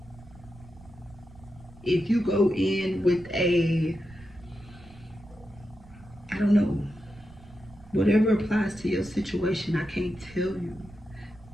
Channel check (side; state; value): right; noise; rumble, 21 dB below the sound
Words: If you go in with a, I don't know. Whatever applies to your situation, I can't tell you.